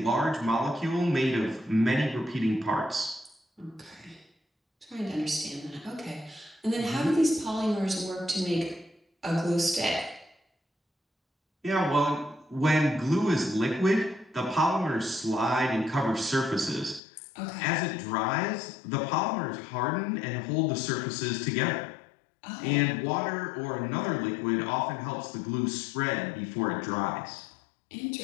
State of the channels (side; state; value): right; drops out; at 17.0 s